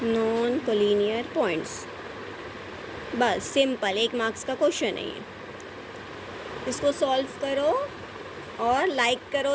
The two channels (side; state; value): both; identical; correlation 1.00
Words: नॉन कोलिनियर पॉइंट्स। बस सिंपल, 1 मार्क्स का क्वेश्चन है ये। इसको सॉल्व करो और लाइक